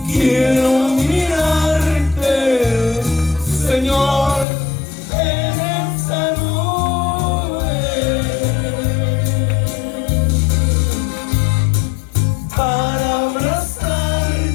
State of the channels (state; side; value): drops out; right; at 4.5 s